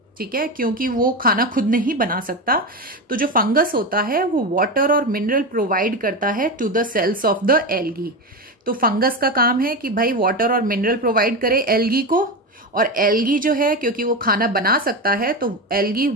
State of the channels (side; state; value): both; normal; correlation 0.17